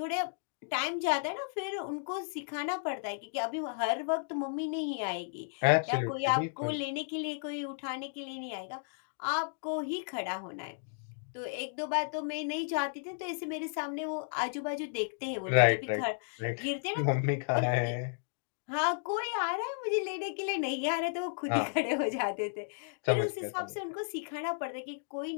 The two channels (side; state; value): right; silent; digital silence